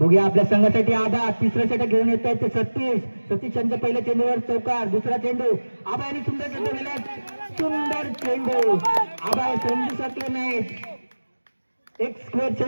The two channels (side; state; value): both; inverted; correlation -1.00